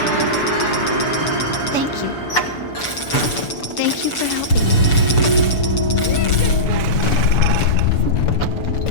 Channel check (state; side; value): late; right; 6.9 ms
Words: Thank you. Thank you for helping.